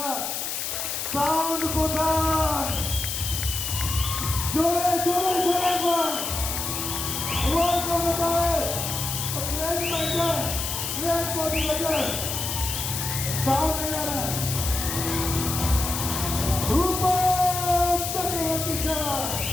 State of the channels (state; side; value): noise; left; hiss, 3 dB below the sound